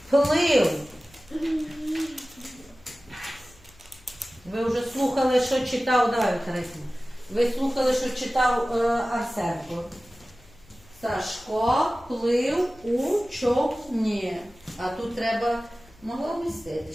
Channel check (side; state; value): left; noise; hum, 27 dB below the sound